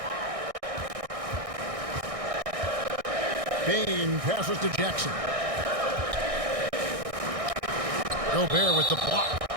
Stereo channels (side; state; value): left; late; 1.6 ms